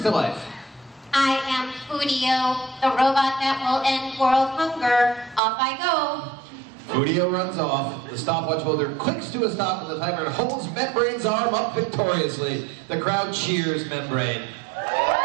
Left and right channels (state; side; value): drops out; left; at 5.4 s